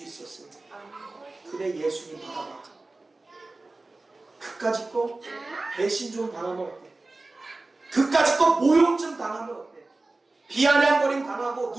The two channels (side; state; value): left; quieter; 3.2 dB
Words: 있었어요. 그래, 예수님 바라봐. 그까짓 거 배신 좀 당하면 어때? 그까짓 거 모욕 좀 당하면 어때? 비아냥거림 당하고